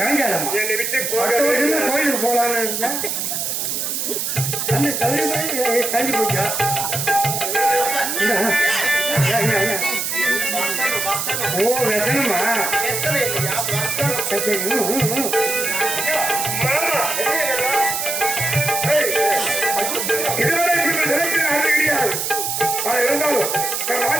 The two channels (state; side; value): noise; right; hiss, 1 dB below the sound